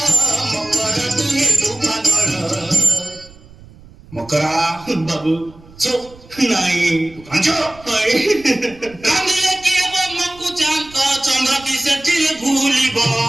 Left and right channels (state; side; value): noise; right; rumble, 22 dB below the sound